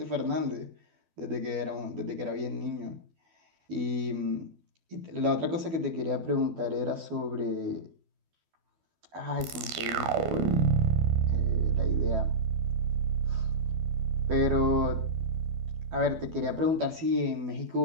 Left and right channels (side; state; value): left; late; 12 ms